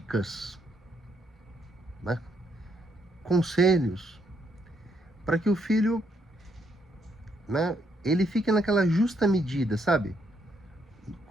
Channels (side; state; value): both; normal; correlation 0.74